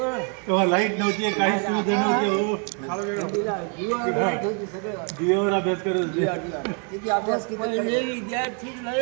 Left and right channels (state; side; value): quieter; left; 38.6 dB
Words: लाईट नव्हती, काही सुविधा नव्हती. हो, दिव्यावर अभ्यास करत होते. किती अभ्यास पहिले विद्यार्थी लय